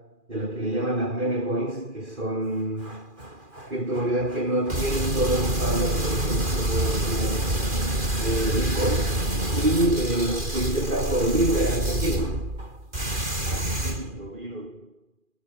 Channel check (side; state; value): left; late; 2.4 ms